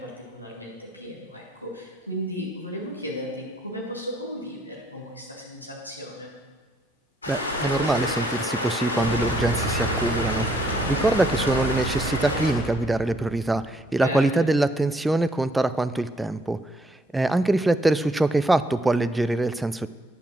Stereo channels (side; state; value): both; normal; correlation 0.68